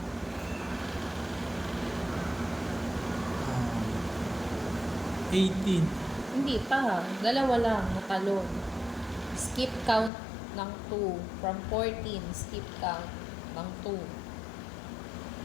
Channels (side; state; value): right; drops out; at 10.1 s